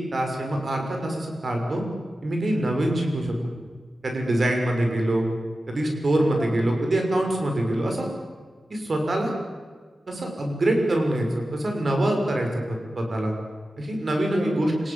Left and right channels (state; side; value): normal; both; correlation 0.93